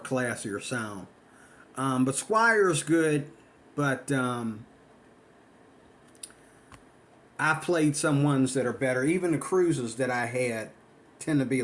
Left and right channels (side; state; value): both; identical; correlation 1.00